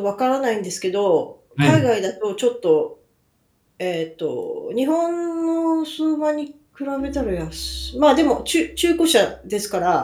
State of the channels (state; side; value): identical; both; correlation 1.00